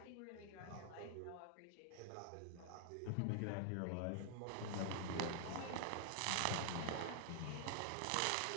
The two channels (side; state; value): both; different; correlation 0.00